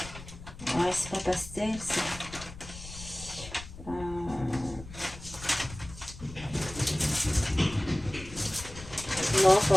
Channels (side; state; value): left; noise; rumble, 14 dB below the sound